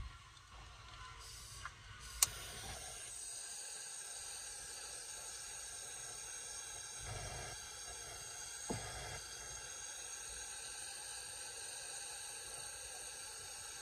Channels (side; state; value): both; identical; correlation 1.00